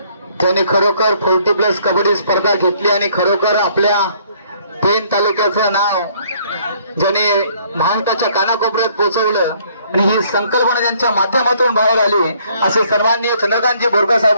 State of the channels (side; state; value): both; inverted; correlation -0.63